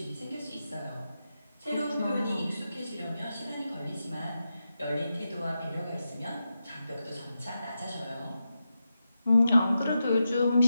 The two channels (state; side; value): inverted; both; correlation -0.89